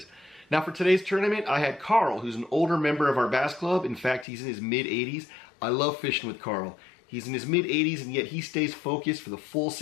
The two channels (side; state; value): right; drops out; at 4.2 s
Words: Now for today's tournament, I had Carl, who's an older member of our bass club. In fact, he's in his mid-80s. I love fishing with Carl. He's in his mid-80s and yet he stays focused for the full